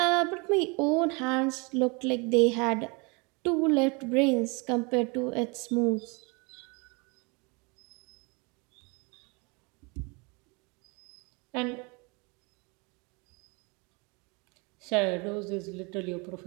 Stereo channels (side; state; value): left; quieter; 29.9 dB